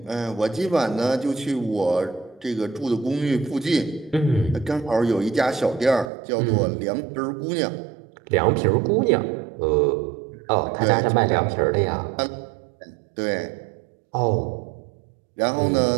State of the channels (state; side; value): drops out; left; at 6.1 s